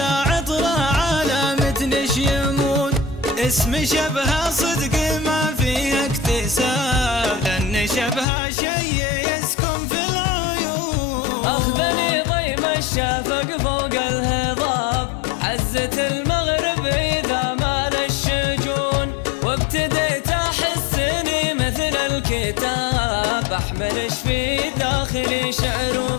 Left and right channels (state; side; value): drops out; right; at 8.2 s